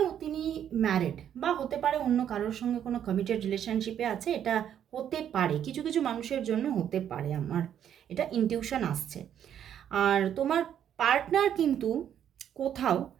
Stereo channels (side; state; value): left; quieter; 9.6 dB